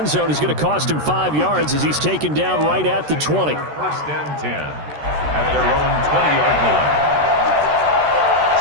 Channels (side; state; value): left; late; 13 ms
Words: zone is going to cost him 5 yards as he's taken down right at the 20. 1st and 10 at their own 20-yard line.